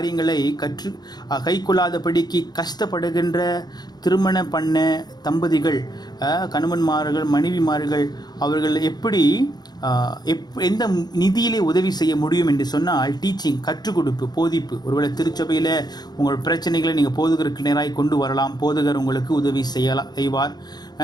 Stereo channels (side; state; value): right; late; 0.20 ms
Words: கைக்கொள்ளாதபடிக்கு கஷ்டப்படுகின்ற திருமணம் பண்ண தம்பதிகள், கணவன்மார்கள் மனைவிமார்கள் அவர்கள் எப்படி எந்த நிதியிலே உதவி செய்ய முடியும் என்று சொன்னால் டீச்சிங், கற்றுக் கொடுப்பு, போதிப்பு. ஒருவேளை திருச்சபையில் உங்கள் பிரச்சனைகளை நீங்கள் போதகருக்கு நேராக கொண்டு வரலாம், போதகர் உங்களுக்கு உதவி செய்வார்.